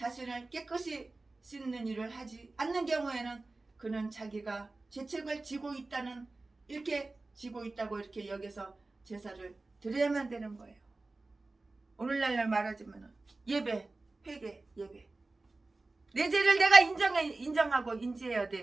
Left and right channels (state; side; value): quieter; left; 3.3 dB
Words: 깨끗이 씻는 일을 하지 않는 경우에는 그는 자기가 죄책을 지고 있다고 이렇게 여겨서 제사를 드려야만 되는 거예요. 오늘날 말하자면 예배, 회개, 예배. 내 죄를 내가 인정하고 인지해야